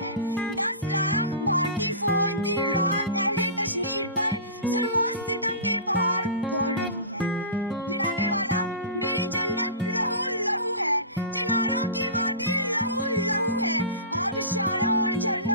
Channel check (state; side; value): inverted; both; correlation -0.30